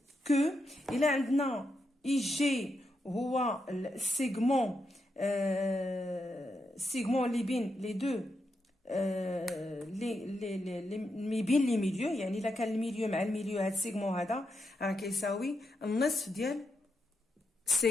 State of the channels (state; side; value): normal; both; correlation 0.84